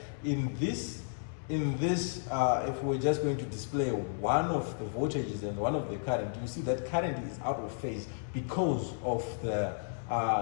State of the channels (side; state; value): right; silent; digital silence